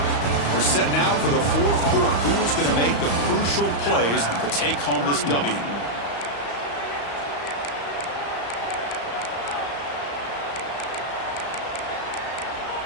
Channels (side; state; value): right; late; 35 ms